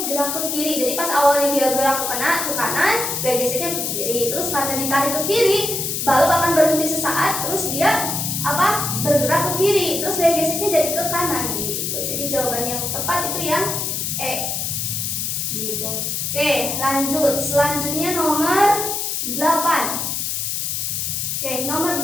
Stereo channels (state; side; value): noise; left; hiss, 1 dB below the sound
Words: gerak ke kiri. Jadi pas awalnya dia gerak ke kanan, gaya geseknya ke kiri. Terus karena ditarik ke kiri, balok akan berhenti sesaat, terus dia bergerak ke kiri. Terus gaya geseknya jadi ke kanan gitu. Jadi jawaban yang tepat itu yang E. Gitu. Oke, lanjut. Selanjutnya nomor 8. Oke, nomor